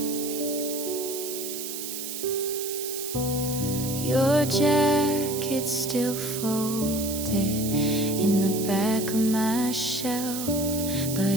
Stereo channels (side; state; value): right; noise; hiss, 6 dB below the sound